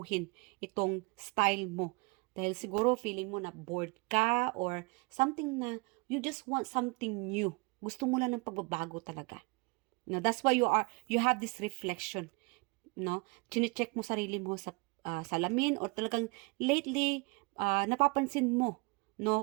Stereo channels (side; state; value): left; quieter; 29.2 dB